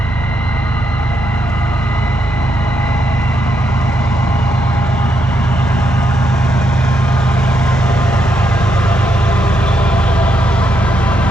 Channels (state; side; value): normal; both; correlation 0.80